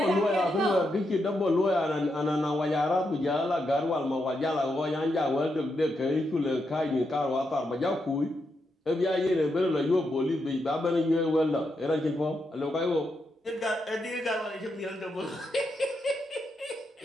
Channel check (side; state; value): both; normal; correlation 0.83